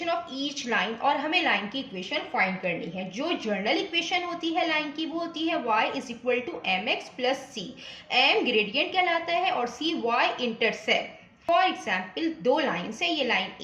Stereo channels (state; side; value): identical; both; correlation 1.00